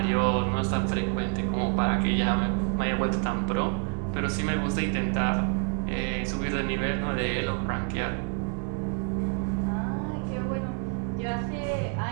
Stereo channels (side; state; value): left; quieter; 36.1 dB